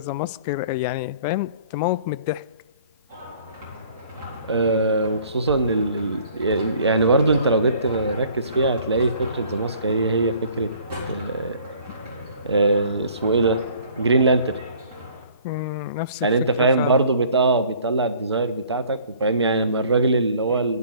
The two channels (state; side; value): inverted; both; correlation -0.54